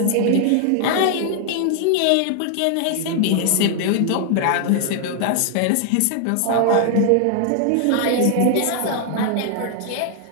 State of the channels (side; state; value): both; different; correlation 0.00